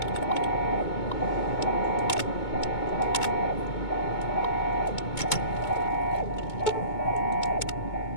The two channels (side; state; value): right; late; 2.2 ms